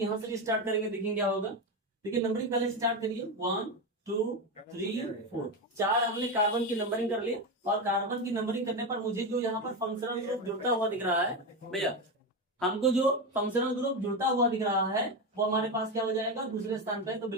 यहाँ से स्टार्ट करेंगे, देखेंगे क्या होगा। देखिए नंबरिंग पहले स्टार्ट करिए। 1 2 3 4, 4 हमने कार्बन की नंबरिंग कर ली और कार्बन की नंबरिंग करने पर मुझे जो यहाँ पर फंक्शनल ग्रुप जुड़ता हुआ दिख रहा है भैया, हमको जो फंक्शनल ग्रुप जुड़ता हुआ दिख रहा है वो हमारे पास क्या हो जाएगा, दूसरे स्थान पे। तो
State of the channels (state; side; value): normal; both; correlation 0.15